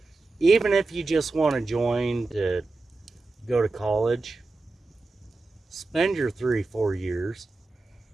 Even if you just want to join to go to college, spend your 3-4 years,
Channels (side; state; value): left; quieter; 3.4 dB